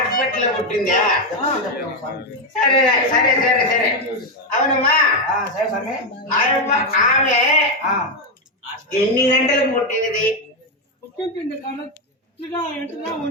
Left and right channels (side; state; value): both; normal; correlation 0.05